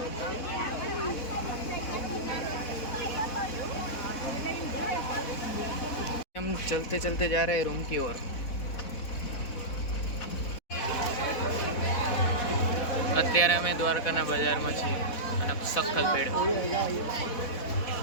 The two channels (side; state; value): right; late; 4.1 ms